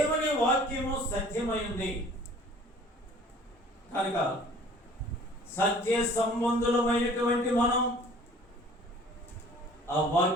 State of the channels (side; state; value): both; normal; correlation 0.50